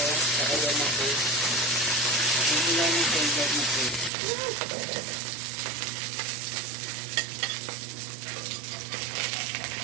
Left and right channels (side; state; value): left; drops out; at 4.1 s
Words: kaya na po. Hindi lang yung favorite na po.